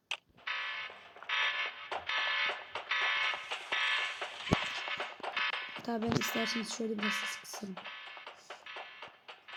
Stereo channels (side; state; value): both; identical; correlation 1.00